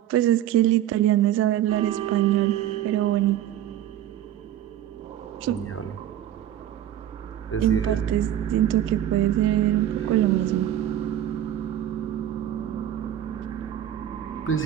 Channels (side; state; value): left; quieter; 11.8 dB